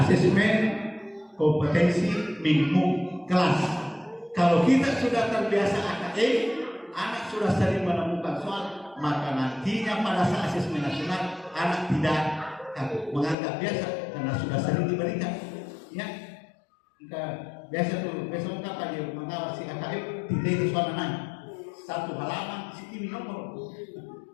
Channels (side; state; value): right; drops out; at 13.4 s